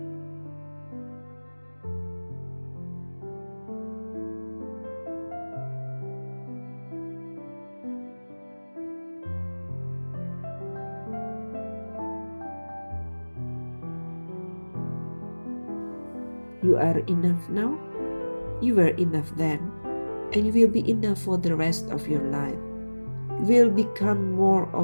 you are enough now, you were enough then, and you will be enough for the rest of your life. You will become more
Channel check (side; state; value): both; inverted; correlation -1.00